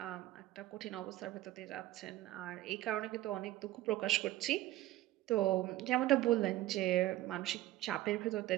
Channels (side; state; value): left; quieter; 15.7 dB